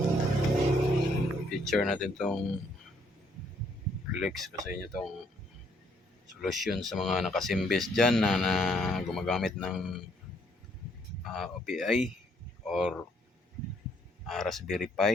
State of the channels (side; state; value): both; normal; correlation 0.68